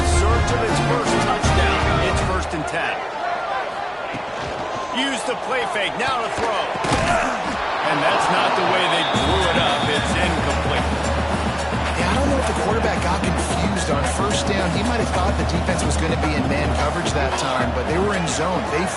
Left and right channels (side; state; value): both; identical; correlation 1.00